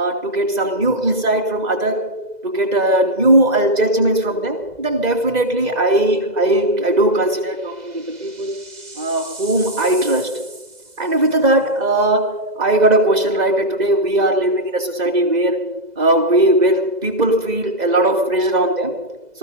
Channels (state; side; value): late; left; 2.0 ms